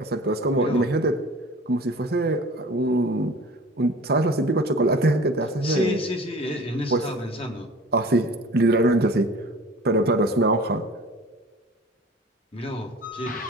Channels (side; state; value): both; normal; correlation 0.42